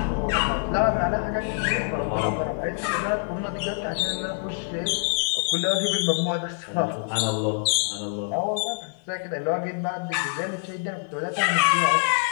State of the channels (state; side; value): silent; right; 60 dB below the other